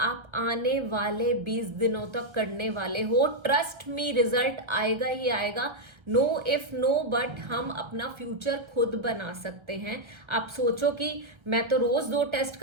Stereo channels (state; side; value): late; left; 1.3 ms